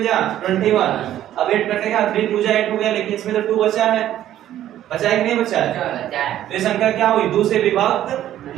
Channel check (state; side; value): quieter; left; 12.2 dB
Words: जा 21। अब 8 कटेगा 3 2 जा 8 हो गया, लेकिन इसमें तो 2 बचा है बचा है कि नहीं बचा है? बचा है। तो ये संख्या क्या हुई? 2 से विभक्त